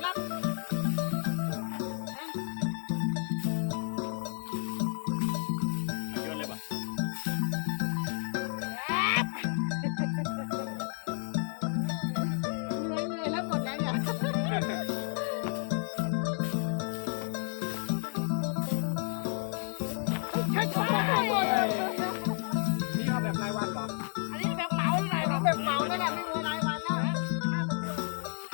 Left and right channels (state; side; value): silent; right; 57 dB below the other